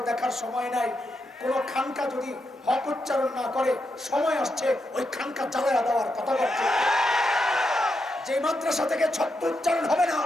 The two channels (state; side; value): normal; both; correlation 0.84